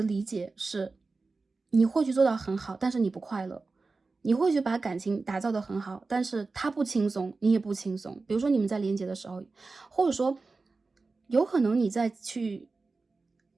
理解是你会去做到很好，但是你不快乐。你会去把感情打造得很好，但是他不轻松，你也不轻松。比如说你们在连接的时候，或者说有可能你在去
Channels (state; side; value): quieter; left; 3.9 dB